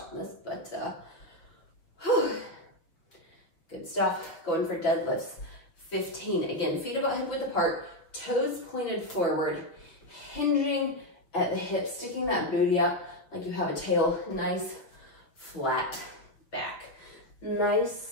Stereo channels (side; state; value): right; late; 6.0 ms